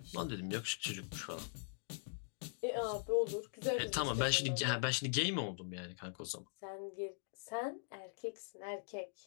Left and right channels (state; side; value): silent; right; digital silence